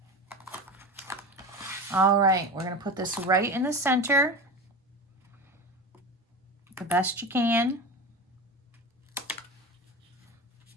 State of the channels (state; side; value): normal; both; correlation 0.27